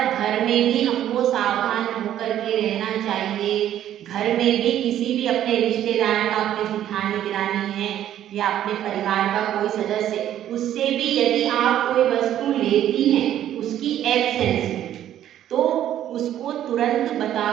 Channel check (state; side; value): quieter; left; 11.5 dB